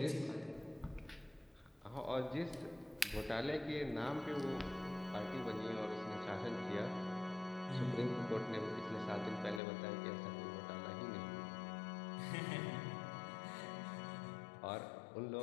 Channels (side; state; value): right; drops out; at 9.6 s